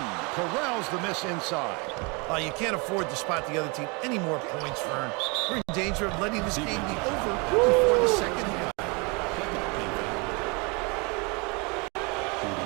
corrals the miss inside. You can't afford to spot the other team any more points, Vern. We're in danger of letting this game be over before the second half.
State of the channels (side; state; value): left; quieter; 30.0 dB